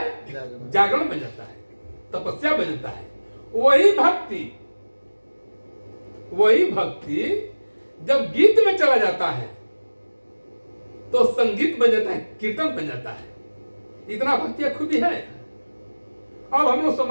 जागरण बन जाता है, तपस्या बन जाता है। वही भक्ति जब गीत में चला जाता है तो संगीत बन जाता है, कीर्तन बन जाता है। इतना भक्ति खूबी है। अब हम लोग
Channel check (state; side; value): inverted; both; correlation -1.00